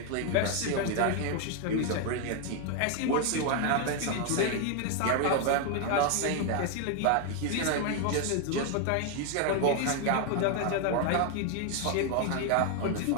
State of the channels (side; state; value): both; different; correlation 0.01